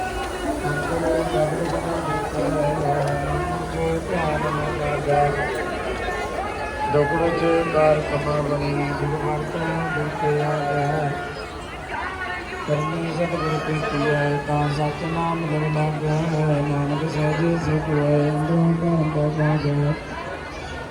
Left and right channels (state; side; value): identical; both; correlation 1.00